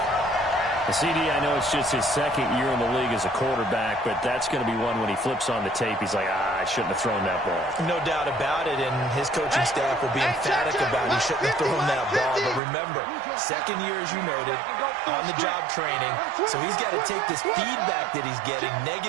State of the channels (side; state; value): left; drops out; at 12.6 s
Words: CD, I know it's just his 2nd year in the league as a quarterback, but that's going to be one when he flips on the tape. He's like, I shouldn't have thrown that ball. No doubt about it, and his coaching staff will be emphatic about he shouldn't have thrown that ball. But remember, 2nd year, as you noted, on-the-job training, so he's got to take this feedback that he's getting,